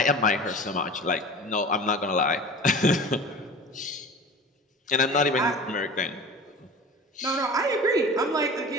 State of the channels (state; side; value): normal; both; correlation 0.36